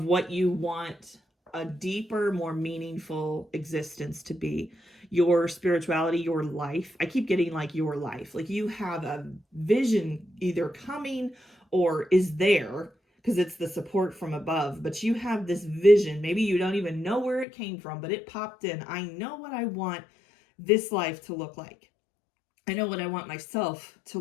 what you want a deeper, more meaningful existence to be. Your spirituality, your life. I keep getting like your life. Like you have a vision either coming or is there because it's the support from above. But you have this vision. Maybe you don't even know where it came from, but it popped in. I know what I want this life to look like. I know what I want myself to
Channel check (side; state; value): right; drops out; at 17.4 s